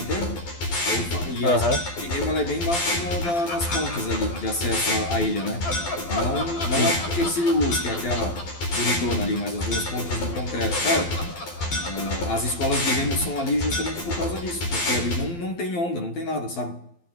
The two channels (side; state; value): right; late; 12 ms